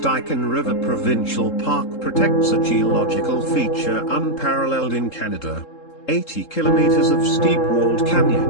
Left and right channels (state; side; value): late; right; 3.7 ms